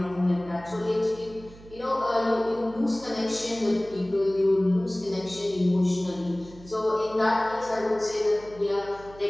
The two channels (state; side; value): noise; right; hum, 20 dB below the sound